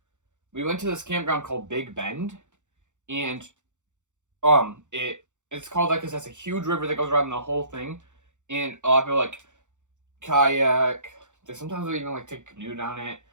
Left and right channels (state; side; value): late; left; 0.85 ms